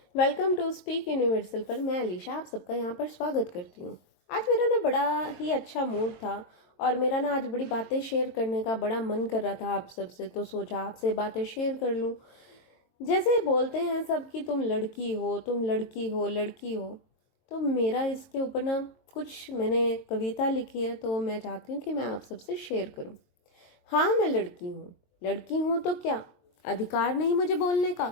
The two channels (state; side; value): late; right; 22 ms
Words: Welcome to speak universal पर मैं अलीशा आप सबका यहाँ पर स्वागत करती हूँ। आज मेरा ना बड़ा ही अच्छा मूड था और मेरा ना आज बड़ी बातें शेयर करने का बड़ा मन कर रहा था आप सबसे, तो सोचा आपसे बातें शेयर कर लूँ। जैसे बोलते हैं सब कि तुम लड़की हो, तुम लड़की हो, लड़की हो, तो मेरा इसके ऊपर ना कुछ मैंने कविता लिखी है, तो मैं चाहती हूँ कि मैं आप सबसे शेयर करूँ। हाँ, मैं लड़की हूँ। लड़की हूँ तो क्या अधिकार नहीं मुझे बोलने